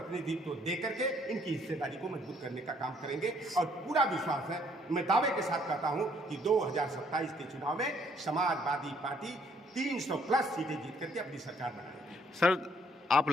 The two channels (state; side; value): normal; both; correlation 0.66